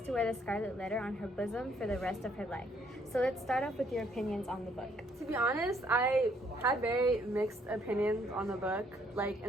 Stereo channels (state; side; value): normal; both; correlation 0.67